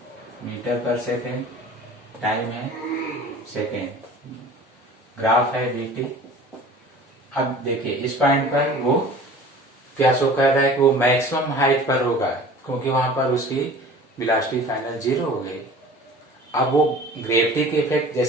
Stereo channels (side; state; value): both; normal; correlation 0.43